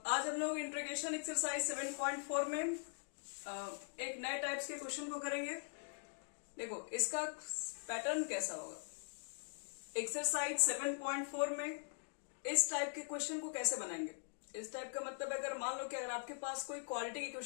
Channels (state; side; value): silent; right; digital silence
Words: हम लोग इंटीग्रेशन एक्सरसाइज 7.4 में एक नए टाइप्स के क्वेश्चन को करेंगे। देखो इसका पैटर्न कैसा होगा। एक्सरसाइज 7.4 में इस टाइप के क्वेश्चन को कैसे बनाएंगे। इस टाइप का मतलब अगर मान लो कि अगर आपके पास कोई क्वालिटी